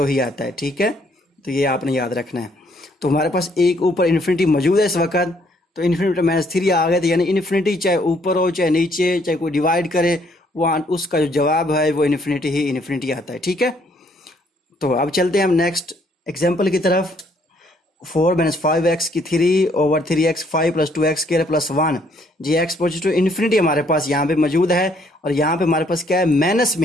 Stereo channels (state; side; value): normal; both; correlation 0.67